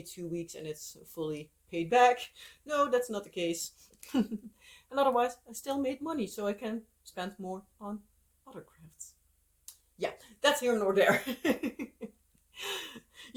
2 weeks and it's fully paid back. No, that's not the case. And otherwise, I still made money, so I can spend more on other crafts. Yeah, that's here nor there.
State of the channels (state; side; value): identical; both; correlation 1.00